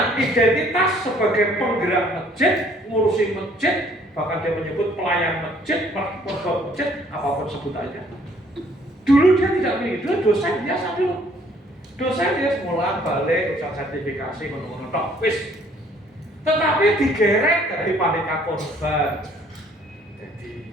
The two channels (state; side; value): normal; both; correlation 0.61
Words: identitas sebagai penggerak masjid, ngurusin masjid, bahkan dia menyebut pelayan masjid, pegawai masjid, apapun sebut aja. Dulu dia tidak memiliki, dulu dosen biasa dulu. Dosen dia semula balik, usaha sertifikasi, menurut wis. Tetapi digeret dari panitia korban.